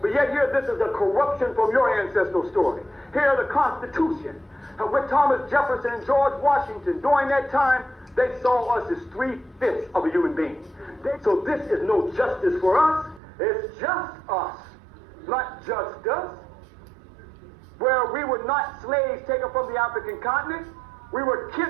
yet here, this is a corruption from your ancestral story. Here, the Constitution. And with Thomas Jefferson and George Washington, during that time, they saw us as 3/5 of a human being. So this is no justice for us. It's just us, not just us. Where we were not slaves taken from the African continent, we were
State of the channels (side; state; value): left; drops out; at 13.2 s